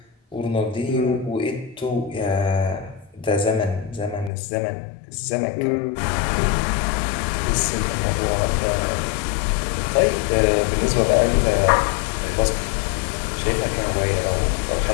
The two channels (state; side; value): drops out; right; at 4.3 s